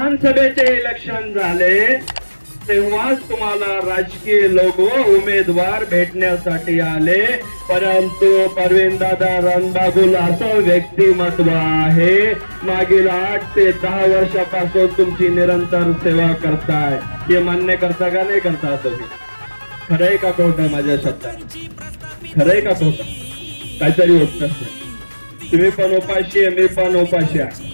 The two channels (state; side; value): inverted; both; correlation -1.00